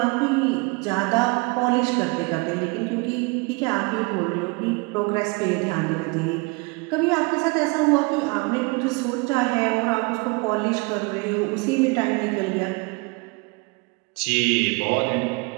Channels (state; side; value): quieter; left; 28.6 dB